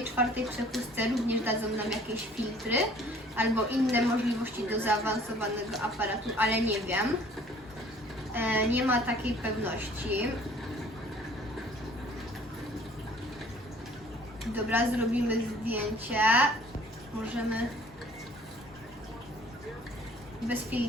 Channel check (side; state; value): both; normal; correlation 0.54